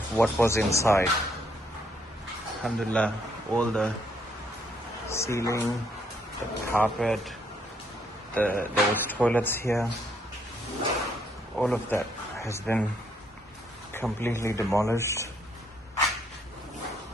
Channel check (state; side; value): normal; both; correlation 0.71